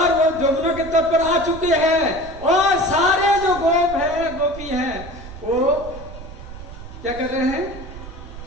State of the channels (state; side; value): noise; right; rumble, 13 dB below the sound